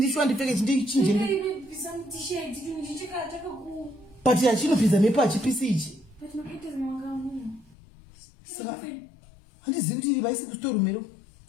ndipfeke chinje. But achinopidza mepo achipisi ichi. Saka handizivi kuti iri vaisi kusitoru mero.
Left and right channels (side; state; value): right; drops out; at 7.8 s